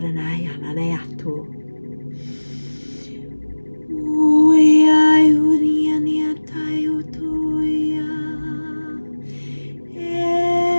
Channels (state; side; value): inverted; both; correlation -1.00